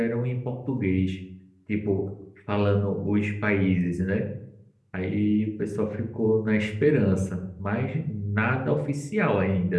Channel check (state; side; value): identical; both; correlation 1.00